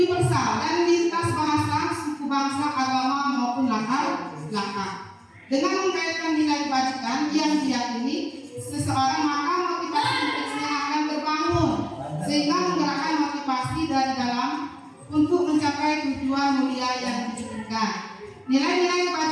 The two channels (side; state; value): both; identical; correlation 1.00